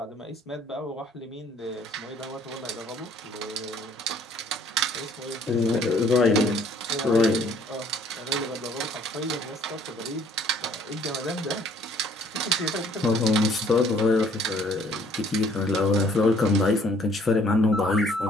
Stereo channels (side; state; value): both; normal; correlation 0.60